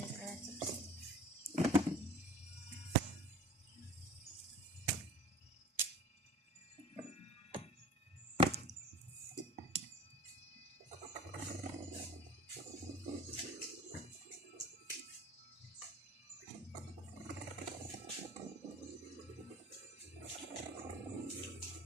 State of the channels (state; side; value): normal; both; correlation 0.41